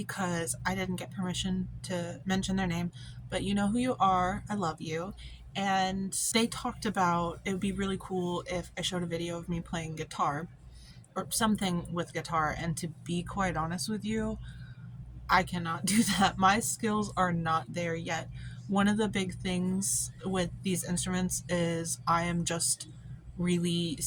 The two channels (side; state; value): both; identical; correlation 1.00